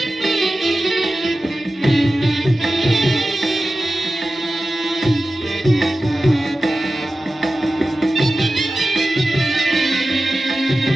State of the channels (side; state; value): both; normal; correlation 0.95